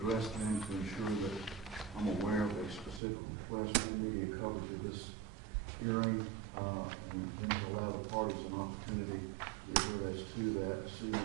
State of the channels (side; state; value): left; drops out; at 3.0 s